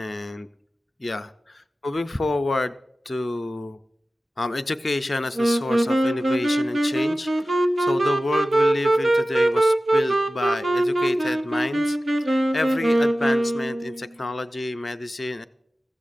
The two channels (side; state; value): both; normal; correlation 0.95